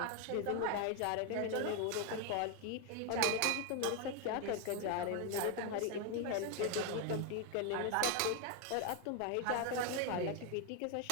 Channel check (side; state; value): both; different; correlation 0.01